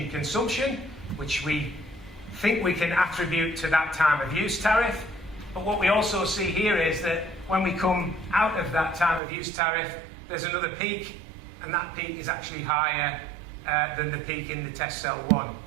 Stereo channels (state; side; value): drops out; left; at 9.2 s